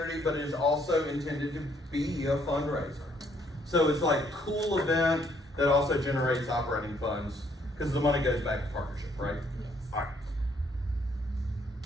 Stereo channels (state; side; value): normal; both; correlation 0.67